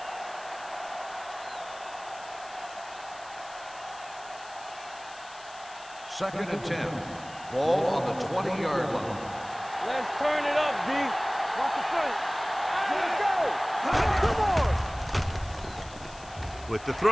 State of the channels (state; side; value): noise; left; hiss, 20 dB below the sound